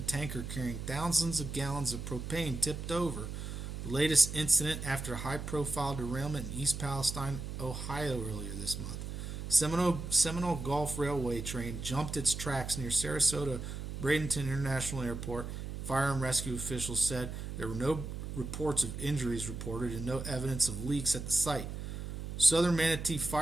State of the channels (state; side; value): noise; right; hum, 6 dB below the sound